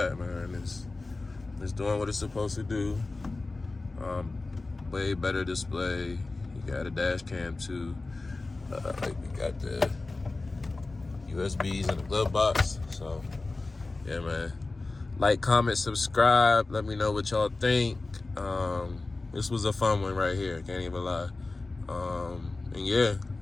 man, it's doing what it's supposed to do. Way better display. You got a dash cam too. We got the USBs in the glove box. So yeah, man, like, comment, subscribe, let me know what y'all think. This was a fun one right here, can't even lie. And yeah,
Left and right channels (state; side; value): quieter; right; 3.4 dB